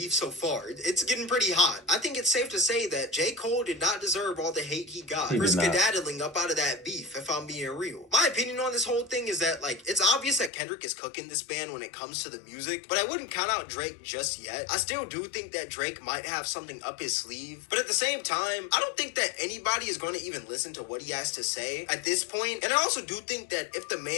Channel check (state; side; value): drops out; right; at 10.5 s